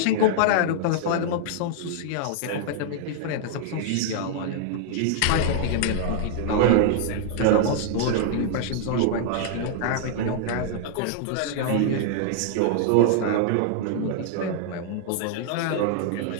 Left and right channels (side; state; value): both; different; correlation -0.01